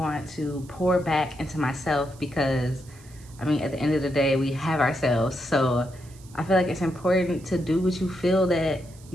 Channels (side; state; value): right; noise; hiss, 24 dB below the sound